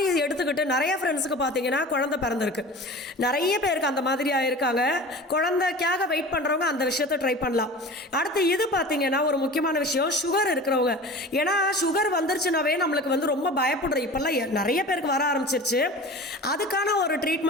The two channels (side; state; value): both; normal; correlation 0.36